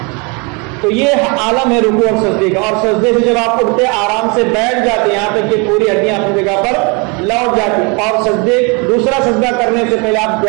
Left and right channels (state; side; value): quieter; left; 31.1 dB